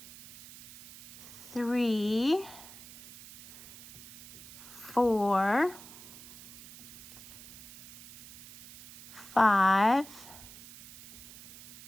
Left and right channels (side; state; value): right; noise; hiss, 17 dB below the sound